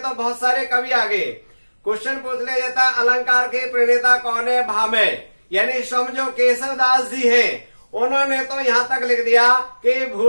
तो बहुत सारे कवि आ गए। क्वेश्चन पूछ लिया जाता है अलंकार के प्रणेता कौन है, भामे। यानी समझो केशव दास जी है, उन्होंने तो यहाँ तक लिख दिया कि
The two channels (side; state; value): both; inverted; correlation -1.00